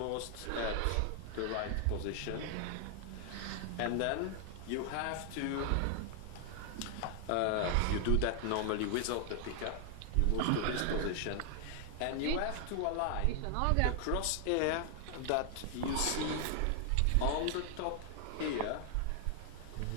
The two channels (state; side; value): different; both; correlation 0.00